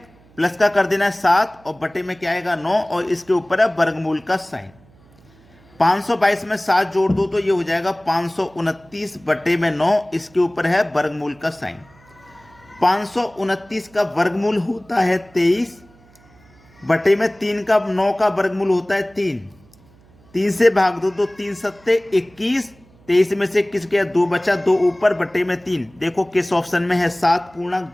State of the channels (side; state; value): right; noise; hum, 28 dB below the sound